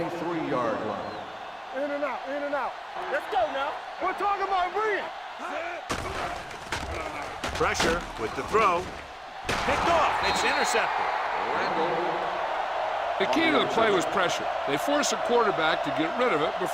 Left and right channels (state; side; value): identical; both; correlation 1.00